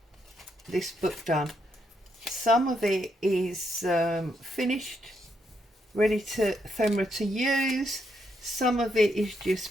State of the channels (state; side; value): normal; both; correlation 0.78